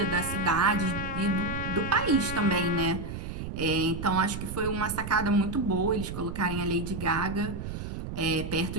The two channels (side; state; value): right; noise; rumble, 7 dB below the sound